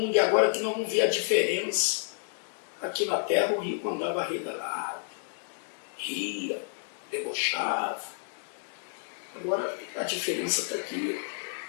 E agora que nós vamos ver a diferença. Aqui na terra o rico andava regalado, ria, debochava. Agora a diferença está aqui.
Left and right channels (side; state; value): right; silent; 58 dB below the other